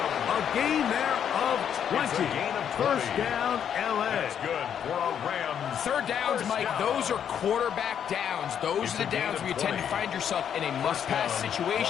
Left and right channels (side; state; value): right; quieter; 8.7 dB